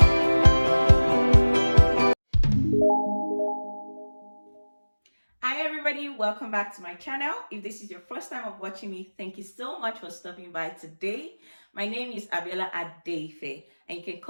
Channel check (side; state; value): both; inverted; correlation -1.00